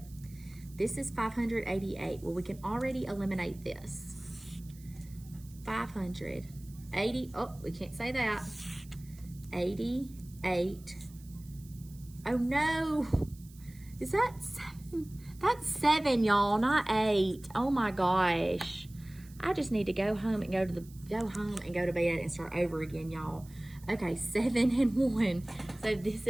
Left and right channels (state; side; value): noise; right; hiss, 24 dB below the sound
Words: This is 588. Well, we can already eliminate this. 580, oh, we can't say that. 88. Oh no, is that 7? That's 7, y'all, not 8. Oh my gosh. I just need to go home and go to bed and start over again, y'all. Okay, 7 and 1. So this